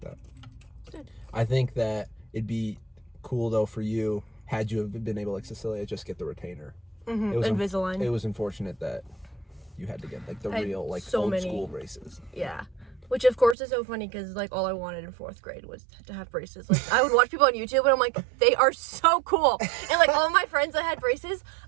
Good. I think that it'd be cool though for you, had you have been able, like Cecilia, just get the retainer. Mm-hmm. It was Invisalign. It was unfortunate that you had to get like the real, like old school braces. Yeah. Which of course is so funny because like all I wanted in 4th grade was to have braces. Like I would watch people on YouTube and I'm like, they are so cool. And like all my friends that had braces,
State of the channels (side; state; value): left; drops out; at 13.6 s